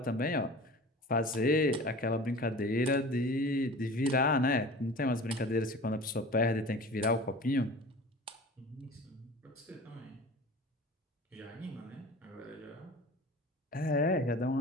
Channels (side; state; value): both; normal; correlation 0.39